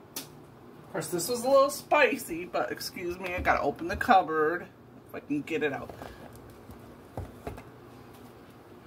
Of course, this was a little spicy, but excuse me, I gotta open the cupboard if I can get it out.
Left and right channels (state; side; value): identical; both; correlation 1.00